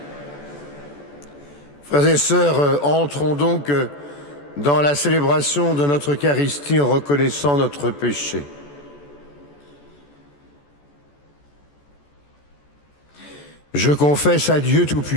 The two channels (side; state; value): right; late; 14 ms